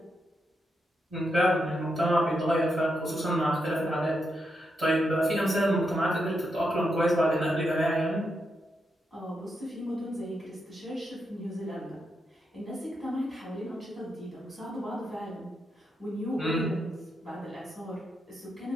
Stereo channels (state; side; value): normal; both; correlation 0.83